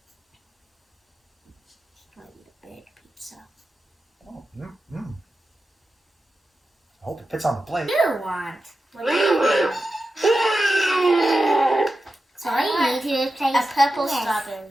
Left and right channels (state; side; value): normal; both; correlation 0.91